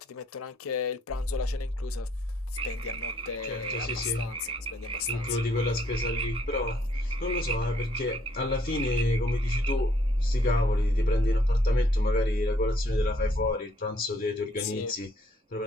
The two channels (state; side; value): normal; both; correlation 0.67